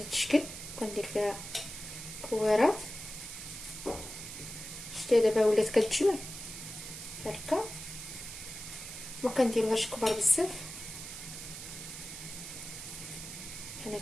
الشكل، كندير فيها كويرات. شتي دابا ولات كتجمع هكا، ما كنديروهاش كبار بزاف بحال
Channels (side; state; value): right; noise; hiss, 10 dB below the sound